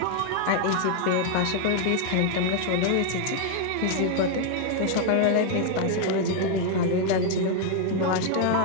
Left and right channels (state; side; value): different; both; correlation 0.00